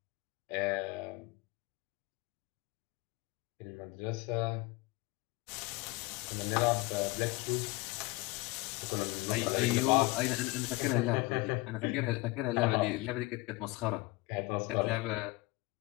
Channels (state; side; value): quieter; right; 22.0 dB